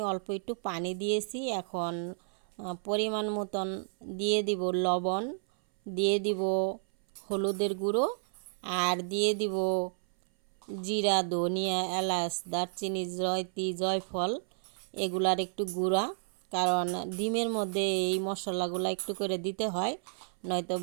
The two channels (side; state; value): left; silent; 57 dB below the other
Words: অল্প একটু পানি দিয়েছি। এখন পরিমাণ মতন দিয়ে দিব লবণ, দিয়ে দিব হলুদের গুঁড়ো, আর দিয়ে দিব জিরা, ধনিয়া, এলাচ, দারচিনি, জয়ত্রী, জয়ফল এগুলার একটু গুঁড়া। কারণ ডিমের মধ্যে এই মশলাগুলো একটু করে দিতে হয়, নয়তো